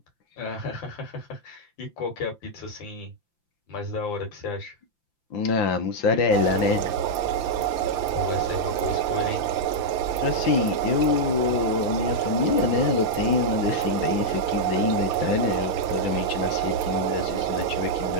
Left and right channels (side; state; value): right; late; 5.8 ms